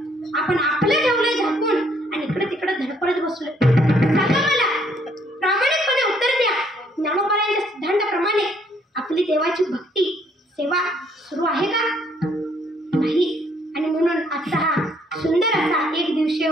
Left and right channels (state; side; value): normal; both; correlation 0.66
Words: आपण आपलं ठेवलंय झाकून आणि इकडे तिकडे धडपडत बसलोय. सांगा मला, प्रामाणिकपणे उत्तर द्या. ज्ञानोबांच्या सिद्धांताप्रमाणे आपली देवाची भक्ती सेवा सुरू आहे का? नाही. आणि म्हणून आजचा हा सुंदर असा एक दिवसीय